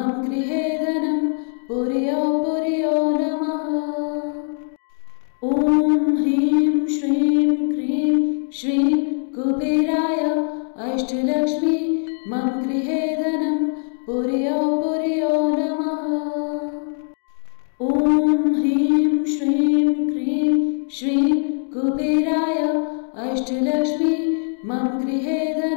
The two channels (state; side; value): silent; right; digital silence